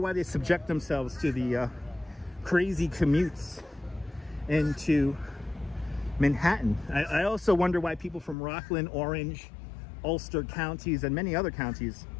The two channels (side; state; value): right; drops out; at 8.3 s